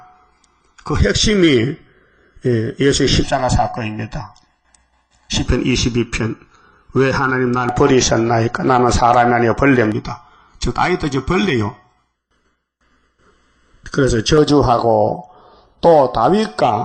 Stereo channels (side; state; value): both; identical; correlation 1.00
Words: 그 핵심이 예수의 십자가 사건입니다. 시편 22편. 왜 하나님 날 버리셨나이까? 나는 사람이 아니라 벌레입니다. 즉 다윗도 이제 벌레요. 그래서 저주하고 또